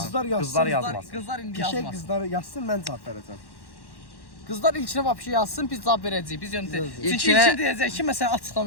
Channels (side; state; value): right; late; 1.1 ms